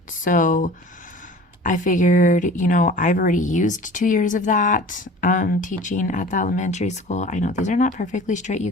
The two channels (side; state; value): both; normal; correlation 0.42